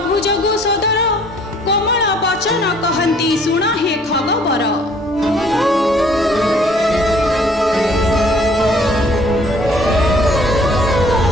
जगु सदर कोमल वचन कहंती सुण हे खगबर।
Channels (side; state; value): both; normal; correlation 0.58